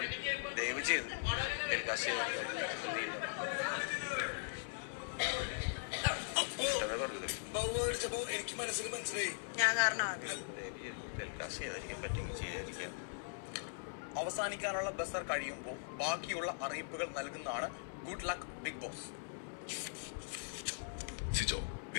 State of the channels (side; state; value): right; silent; digital silence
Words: ദയവ് ചെയ്ത് ടെലികാസ്റ്റ് എനിക്ക് മനസ്സിലായി. ഞാൻ കാരണമാണ്. ടെലികാസ്റ്റ് ചെയ്യാതിരിക്കാൻ പറ്റുമെങ്കിൽ ചെയ്യാതിരിക്കാം. അവസാനിക്കാനുള്ള ബസർ കഴിയുമ്പോൾ ബാക്കിയുള്ള അറിയിപ്പുകൾ നൽകുന്നതാണ് good luck big boss. Sijo,